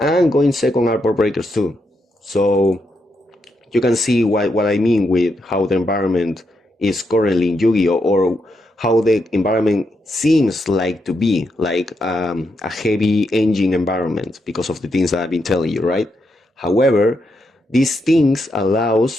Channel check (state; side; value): normal; both; correlation 0.82